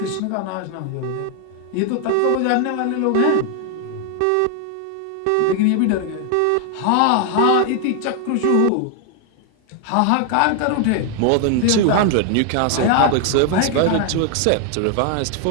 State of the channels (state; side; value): different; both; correlation 0.00